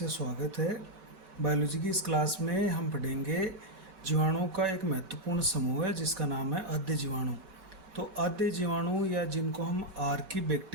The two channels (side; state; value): left; late; 5.2 ms